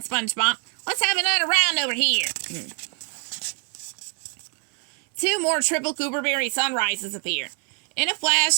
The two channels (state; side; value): quieter; left; 39.3 dB